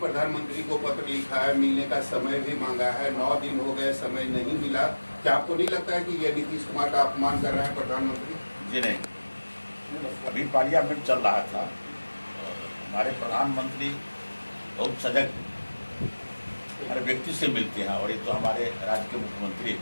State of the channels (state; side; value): inverted; both; correlation -1.00